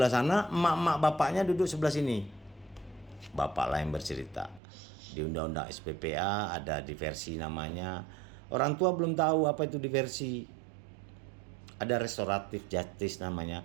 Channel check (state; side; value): drops out; left; at 4.6 s